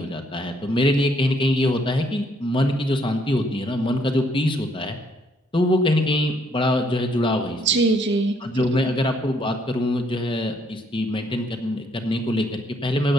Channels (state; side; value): normal; both; correlation 0.69